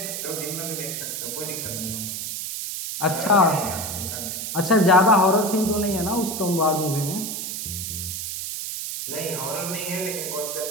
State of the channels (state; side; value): noise; right; hiss, 5 dB below the sound